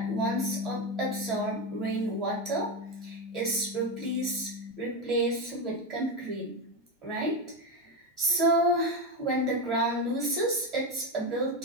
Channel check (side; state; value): both; normal; correlation 0.13